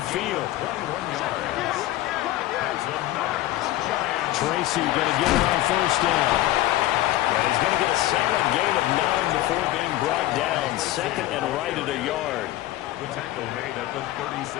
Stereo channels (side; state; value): right; quieter; 15.5 dB